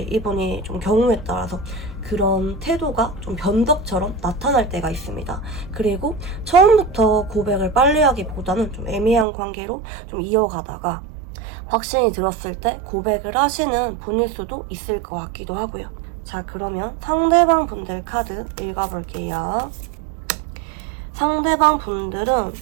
이분이 좀 경우에 따라서 그런 태도가 좀 변덕처럼 나타날 때가 있습니다. 그리고 처음부터 고백을 빨리 하기보다는 좀 애매한 관계로 좀 이어가다가 확신이 들었을 때 고백을 하시는 분일 수도 있을 것 같기도 하고요. 자, 그러면 상대방 분들 카드 읽어볼게요. 상대방 분들은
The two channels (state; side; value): drops out; left; at 9.2 s